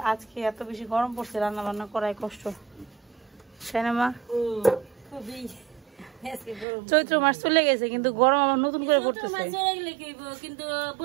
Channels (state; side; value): drops out; left; at 6.7 s